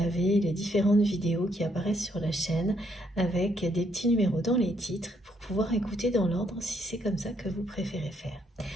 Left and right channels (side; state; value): both; normal; correlation 0.72